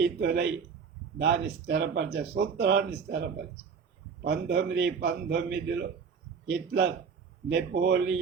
దాన్ని సూత్రాన్ని స్థిరపరిచి 1919లో హిట్లర్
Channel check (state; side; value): quieter; left; 6.1 dB